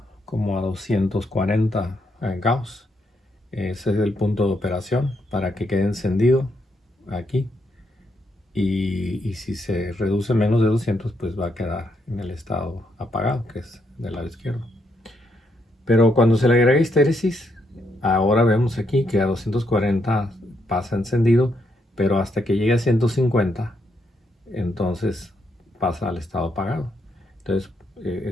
como a 240 Gauss. Ese es el punto de operación para que quede encendido aquí. Y si se reduce menos de 200, pues va a quedar en el estado apagado, que es del lado izquierdo. Pero cuando se le agrega histéresis, ahora vemos aquí que a 240 pasa encendido, pero hasta que llegue a 150, entonces pasa al estado apagado. Entonces,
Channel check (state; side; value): normal; both; correlation 0.77